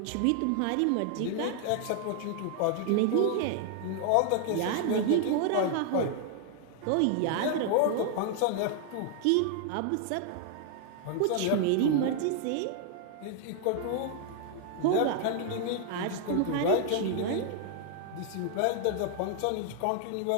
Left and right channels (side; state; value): both; different; correlation 0.00